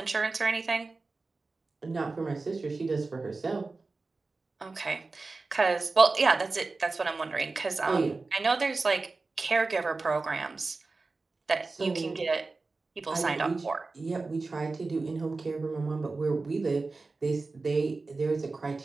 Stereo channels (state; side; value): quieter; left; 3.7 dB